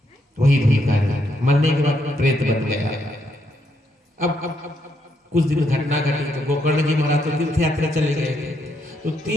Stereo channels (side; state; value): both; normal; correlation 0.77